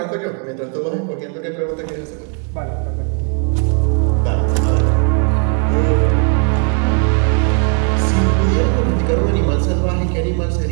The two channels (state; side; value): quieter; left; 37.8 dB